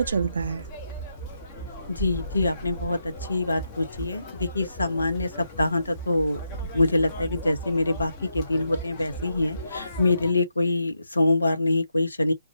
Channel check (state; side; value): inverted; both; correlation -0.83